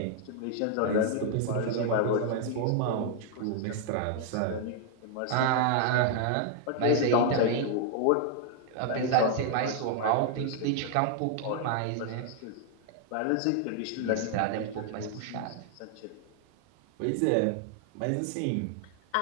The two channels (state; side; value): different; both; correlation 0.00